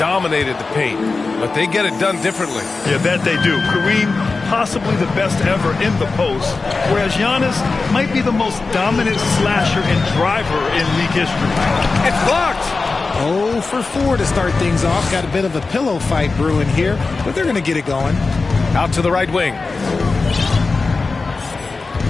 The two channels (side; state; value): right; quieter; 4.0 dB